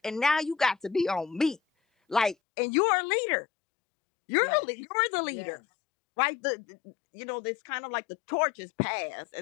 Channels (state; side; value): drops out; right; at 2.4 s